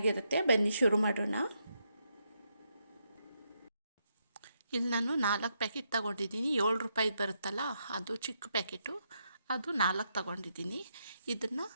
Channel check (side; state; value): both; inverted; correlation -0.80